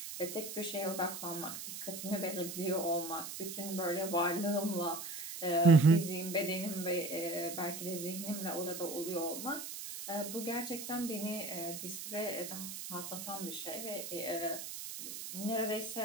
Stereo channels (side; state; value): right; noise; hiss, 8 dB below the sound